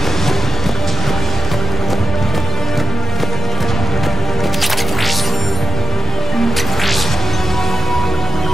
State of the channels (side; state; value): both; normal; correlation 0.81